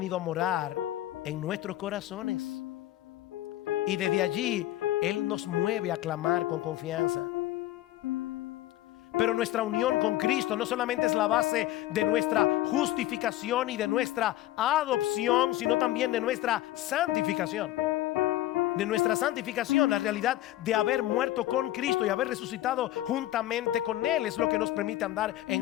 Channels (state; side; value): quieter; right; 14.9 dB